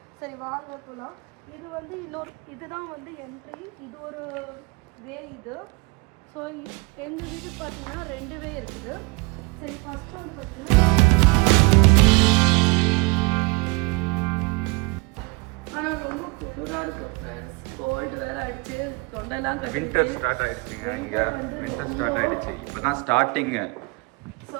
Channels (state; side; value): quieter; left; 27.4 dB